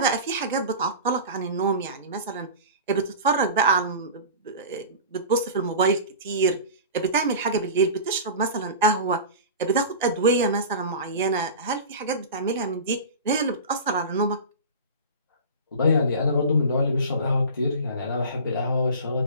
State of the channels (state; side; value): inverted; both; correlation -0.33